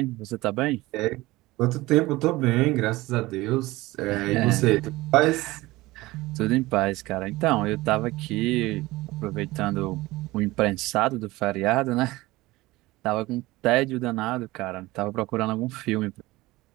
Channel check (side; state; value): left; quieter; 19.6 dB